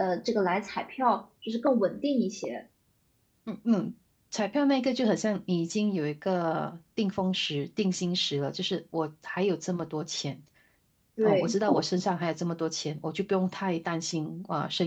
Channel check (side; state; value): both; identical; correlation 1.00